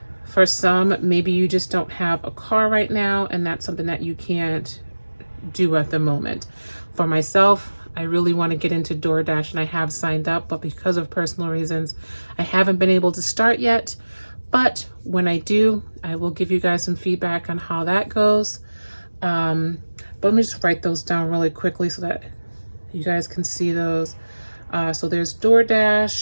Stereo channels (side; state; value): both; inverted; correlation -1.00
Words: for some, maybe you just don't have a car right now, and that's something that you can't do at the moment. For myself, I really want to get into DoorDash, and I have signed up, but because of personal reasons, I haven't been able to start yet. But when I do, I will give you guys some feedback on how that goes. But let me just write those down really quickly so that you guys can see those. So there's